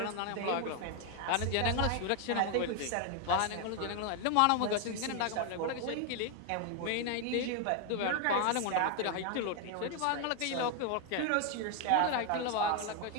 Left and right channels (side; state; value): both; different; correlation 0.01